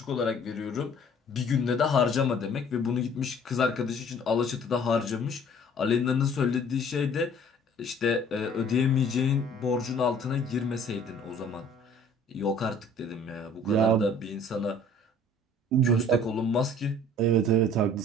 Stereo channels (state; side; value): normal; both; correlation 0.52